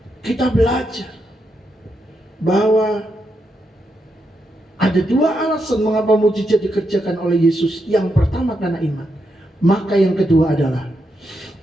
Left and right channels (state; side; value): normal; both; correlation 0.83